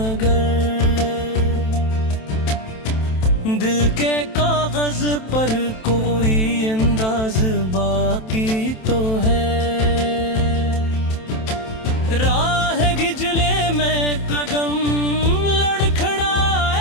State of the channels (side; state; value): right; late; 27 ms